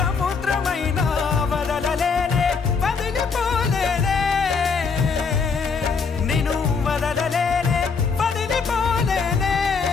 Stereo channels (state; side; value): quieter; right; 5.3 dB